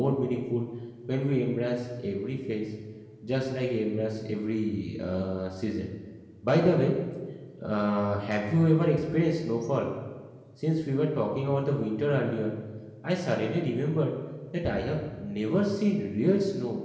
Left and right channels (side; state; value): both; identical; correlation 1.00